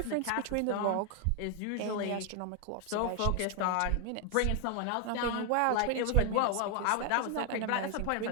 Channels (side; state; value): both; different; correlation 0.00